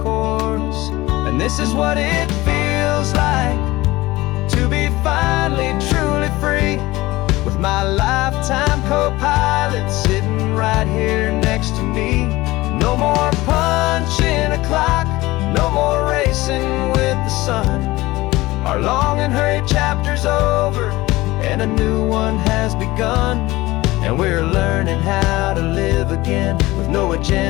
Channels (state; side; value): quieter; right; 19.3 dB